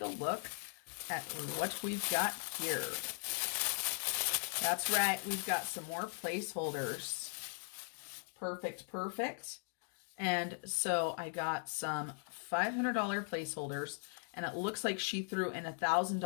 a look at what we've got here. That's right, we've got some more placeholders. Perfect, perfect. And so I got some $500 placeholders, and it looks like she threw in a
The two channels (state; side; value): silent; right; 52 dB below the other